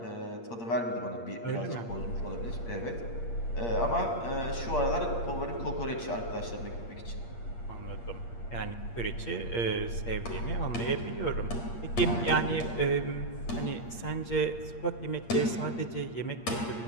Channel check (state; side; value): late; right; 8.6 ms